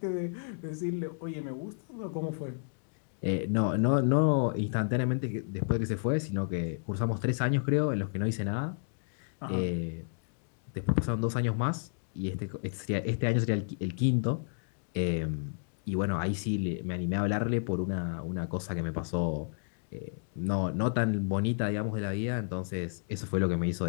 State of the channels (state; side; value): silent; right; digital silence